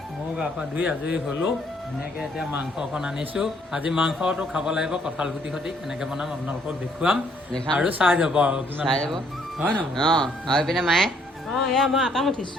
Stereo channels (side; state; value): both; normal; correlation 0.66